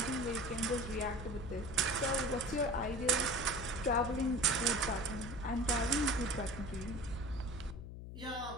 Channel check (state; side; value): noise; left; hum, 10 dB below the sound